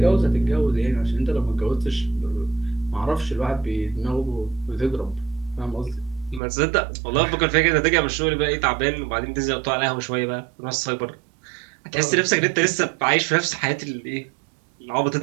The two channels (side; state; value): left; drops out; at 6.4 s